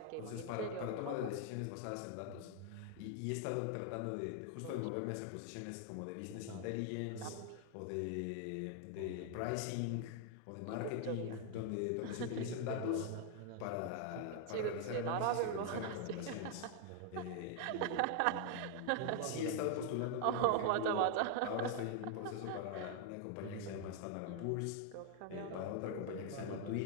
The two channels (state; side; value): different; both; correlation 0.00